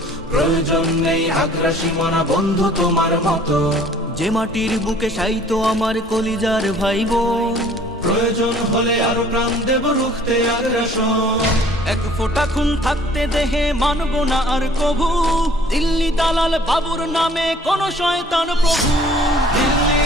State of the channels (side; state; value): both; normal; correlation 0.54